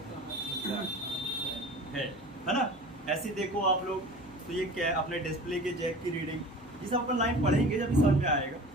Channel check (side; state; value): left; noise; hum, 26 dB below the sound